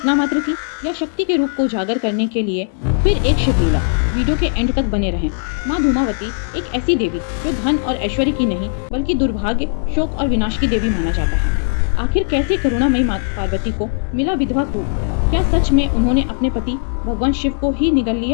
मात्र थी या शक्ति के रूप को उजागर करने के लिए फिर एक शिवलीला? वीडियो के एंड तक बने रहें। माँ धूमावती एक ऐसी देवी जो धन और ऐश्वर्य की नहीं बल्कि दुर्भाग्य, शोक और विनाश की देवी माना जाता है। आखिर कैसे करुणामयी माँ पार्वती को मिला विधवा रूप? क्या सच में उन्होंने अपने पति भगवान शिव को ही निगल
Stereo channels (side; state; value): right; silent; 67 dB below the other